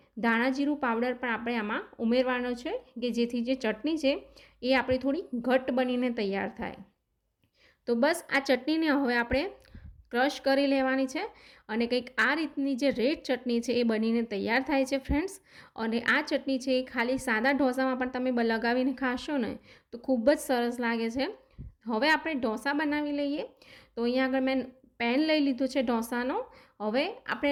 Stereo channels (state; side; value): identical; both; correlation 1.00